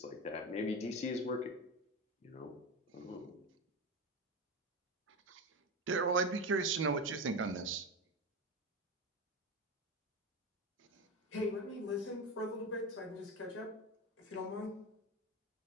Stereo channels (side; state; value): both; normal; correlation 0.20